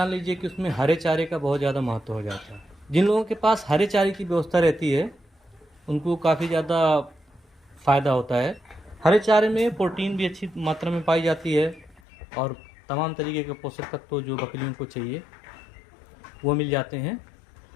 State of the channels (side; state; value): right; drops out; at 12.0 s